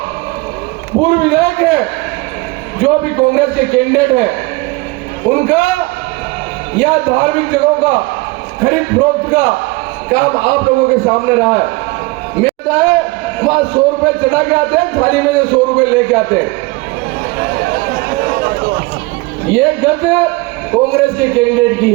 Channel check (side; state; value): left; quieter; 23.7 dB